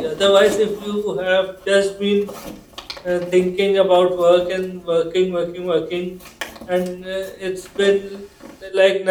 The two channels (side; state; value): both; identical; correlation 1.00